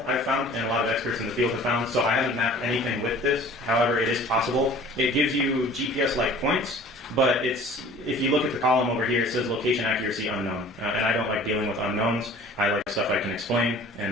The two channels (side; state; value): both; normal; correlation 0.47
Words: I've found, and a lot of experts in the field have found, so I haven't mapped anything with this. However, it is possible. It gives you GPS-like points, but if you look at the column over here, it says location accuracy unknown. And I don't like dealing with unknowns. I like stuff I can explain